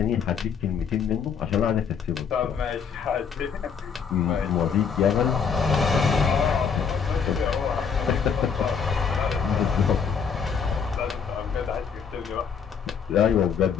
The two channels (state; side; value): quieter; right; 6.5 dB